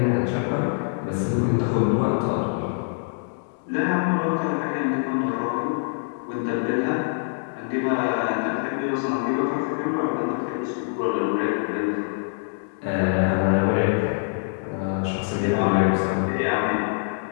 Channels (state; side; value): silent; right; digital silence